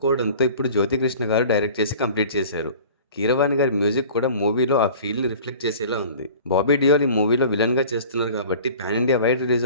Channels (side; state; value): both; inverted; correlation -0.44